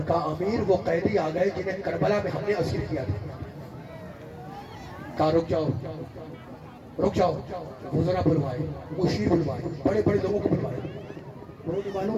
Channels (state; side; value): identical; both; correlation 1.00